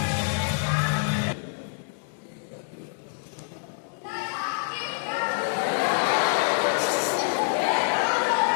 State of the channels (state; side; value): silent; right; digital silence